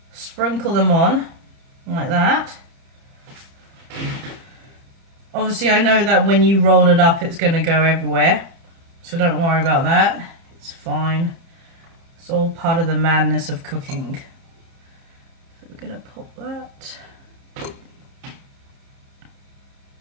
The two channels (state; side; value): late; left; 30 ms